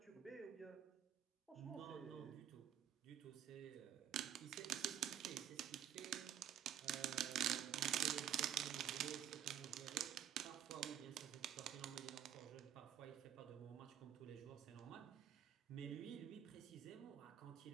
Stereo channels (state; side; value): quieter; left; 10.4 dB